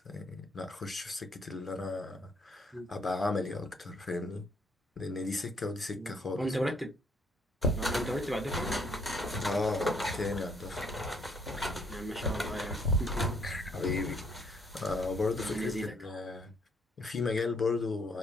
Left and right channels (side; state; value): both; normal; correlation 0.68